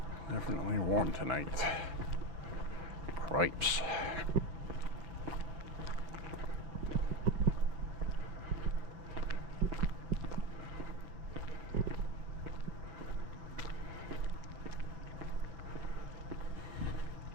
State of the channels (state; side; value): late; left; 5.8 ms